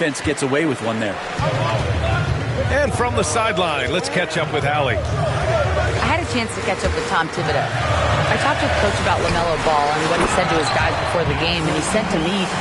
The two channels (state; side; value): identical; both; correlation 1.00